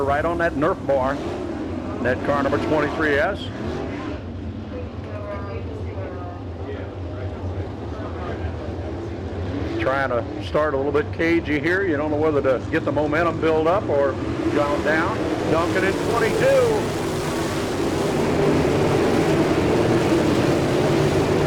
right on that Nerf bar. That car number 23S. Trying to start a little bit cagey here. You don't know whether to get the momentum build up or gone down. Duncan in 22.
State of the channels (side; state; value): both; identical; correlation 1.00